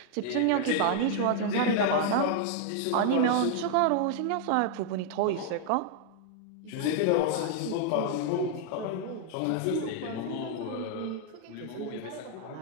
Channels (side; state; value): both; different; correlation 0.00